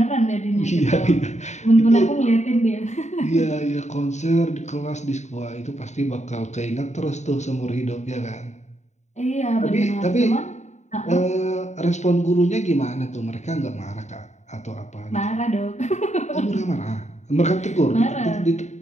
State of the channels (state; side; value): late; right; 0.34 ms